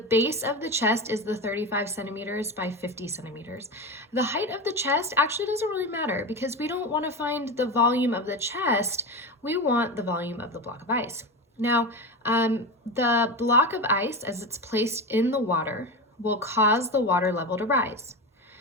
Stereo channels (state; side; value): normal; both; correlation 0.21